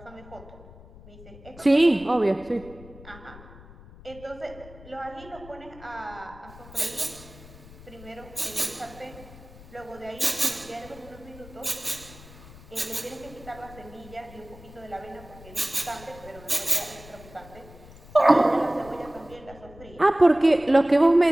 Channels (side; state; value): left; noise; rumble, 19 dB below the sound